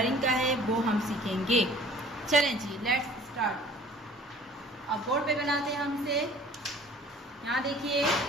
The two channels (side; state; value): both; normal; correlation 0.50